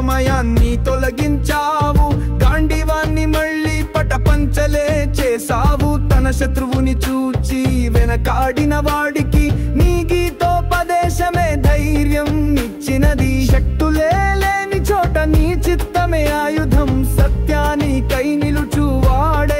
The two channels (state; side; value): identical; both; correlation 1.00